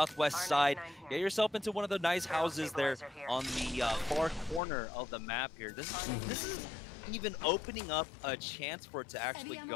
side, get yourself into one of the nice houses there on the far corner of the map here. This is even opening up a chance for it to actually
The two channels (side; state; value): right; drops out; at 4.6 s